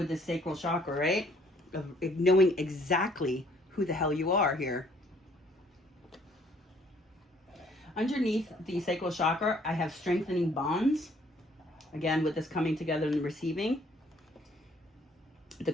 the sacral chakra, right? Of knowing exactly who the hell you are here. Underneath the sacral chakra, I have strengthening bonds. Again, with this coming together and receiving. The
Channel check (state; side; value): normal; both; correlation 0.62